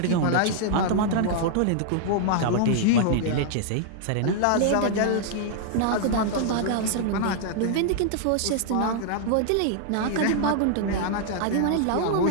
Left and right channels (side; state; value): both; different; correlation -0.01